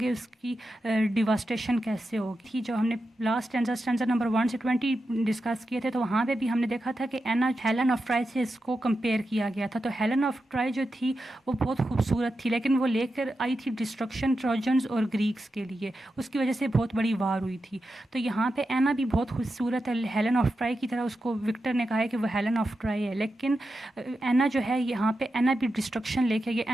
اس کی ڈیواسٹیشن کیسے ہوگی. جو ہم نے لاسٹ اسٹینزا نمبر 1 سے 20 ڈسکس کیے تھے تو وہاں پہ بھی ہم نے دیکھا تھا کہ اینا ہیلن آف ٹرائی سے اس کو کمپیئر کیا گیا تھا. تو ہیلن آف ٹرائی جو تھی وہ بہت خوبصورت تھی لیکن وہ لے کر آئی تھی ڈسٹرکشن ٹروجنز اور گریکس کے لیے, اس کی وجہ سے بہت بڑی وار ہوئی تھی. تو یہاں پہ اینا بھی بہت خوبصورت ہے ہیلن آف ٹرائی کی طرح, اس کو وکٹر نے کہا ہے کہ وہ ہیلن آف ٹرائی ہے, لیکن اینا جو ہے یہاں پہ اینا بھی ڈسٹرکشن لے کے گیا.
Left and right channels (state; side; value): normal; both; correlation 0.89